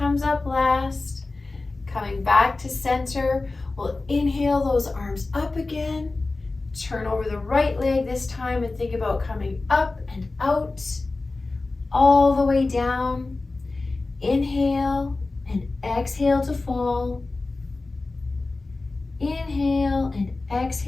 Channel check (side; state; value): right; quieter; 3.4 dB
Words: up last. Coming back to center, we'll inhale those arms up again. Turn over the right leg this time and think about coming up and out, all the way down. Inhale and exhale to fall. Inhale and